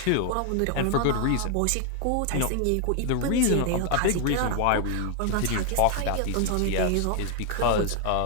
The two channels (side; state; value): both; different; correlation 0.00